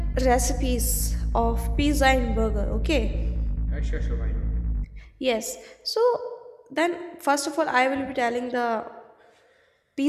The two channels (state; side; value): identical; both; correlation 1.00